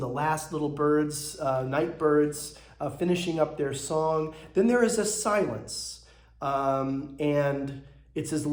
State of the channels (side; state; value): both; identical; correlation 1.00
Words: the last little birds, night birds, finishing up their song. Then there is a silence, and it's as